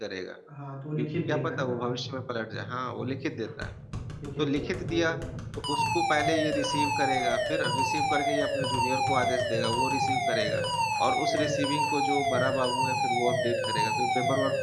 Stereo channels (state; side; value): identical; both; correlation 1.00